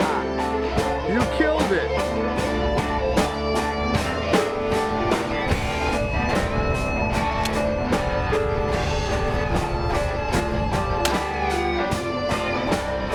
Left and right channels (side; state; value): both; identical; correlation 1.00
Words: You killed it!